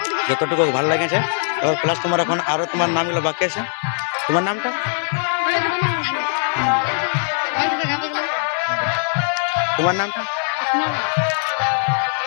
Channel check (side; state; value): right; silent; 64 dB below the other